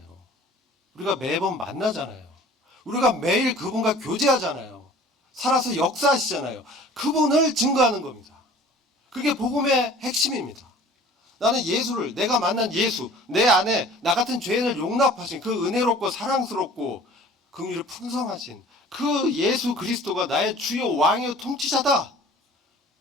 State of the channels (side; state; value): both; normal; correlation 0.47